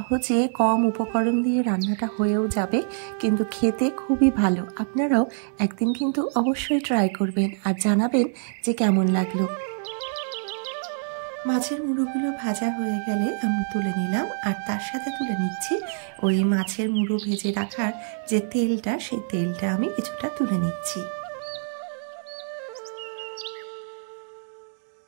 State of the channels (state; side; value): silent; left; digital silence